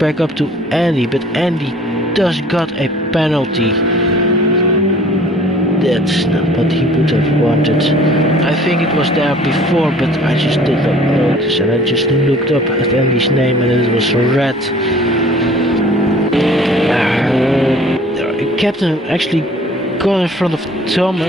up to Andy, but Andy does got a penalty. That's not what he would have wanted. I think it was there before, but I just did not notice, and I just looked up at Andy's name and it was red. Captain actually got in front of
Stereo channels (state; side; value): normal; both; correlation 0.51